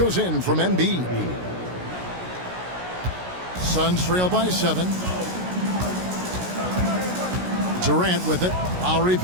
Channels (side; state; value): left; late; 16 ms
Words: in from Embiid. Suns trail by 7. Durant with it. Lowry